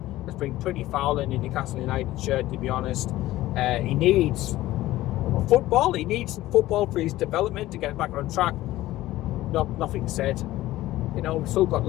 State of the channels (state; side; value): quieter; right; 16.2 dB